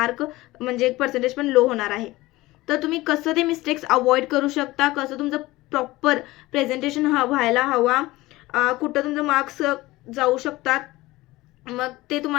म्हणजे पर्सेंटेज पण लो होणार आहे. तर तुम्ही कसं ते मिस्टेक्स अवॉइड करू शकता, कसं तुमचं प्रॉपर प्रेझेंटेशन व्हायला हवा, कुठं तुमचं मार्क्स जाऊ शकतात, मग ते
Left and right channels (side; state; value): right; quieter; 19.0 dB